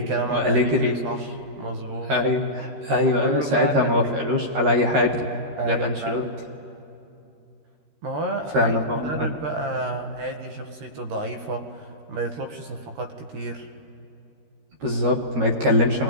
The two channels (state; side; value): late; left; 13 ms